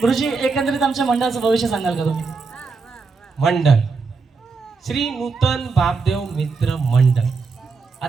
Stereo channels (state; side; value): quieter; left; 4.6 dB